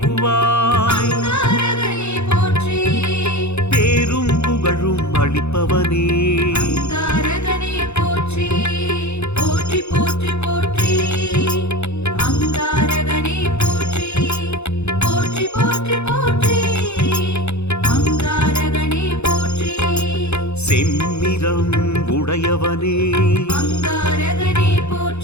அங்காரகனே போற்றி. பேரும் புகழும் அளிப்பவனே அங்காரகனே போற்றி. போற்றி போற்றி போற்றி. அங்காரகனே போற்றி. போற்றி போற்றி போற்றி. அங்காரகனே போற்றி. செம்மிரம் உடையவனே அங்காரகனே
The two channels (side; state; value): right; late; 0.81 ms